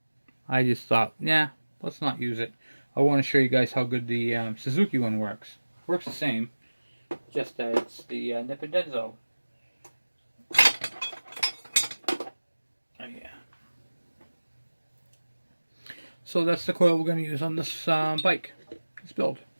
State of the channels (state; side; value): inverted; both; correlation -1.00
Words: I just thought, yeah, let's not use it. I want to show you guys how good the Suzuki one works. Works the same, just that it's the Nippon-Denso. Oh, yeah. So that's the coil we're going to use on this bike, this build.